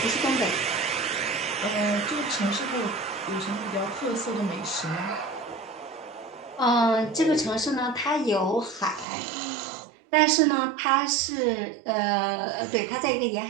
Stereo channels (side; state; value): left; drops out; at 9.1 s